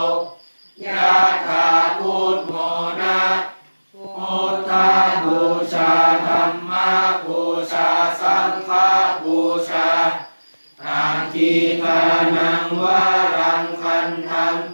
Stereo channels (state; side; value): inverted; both; correlation -1.00